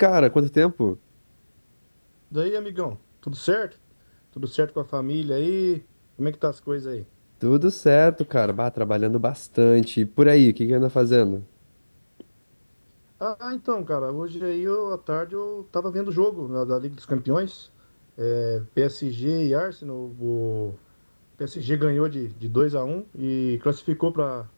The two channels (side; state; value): both; inverted; correlation -1.00